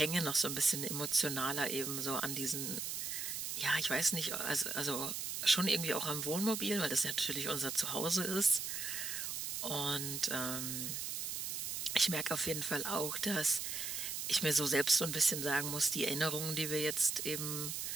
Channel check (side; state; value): right; noise; hiss, 3 dB below the sound